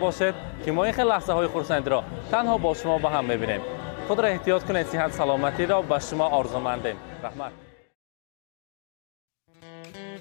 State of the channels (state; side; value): silent; right; digital silence